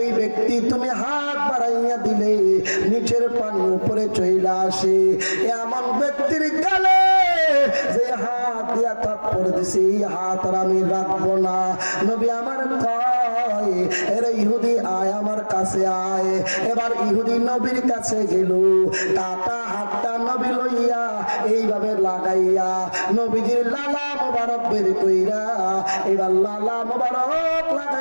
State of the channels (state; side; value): inverted; both; correlation -1.00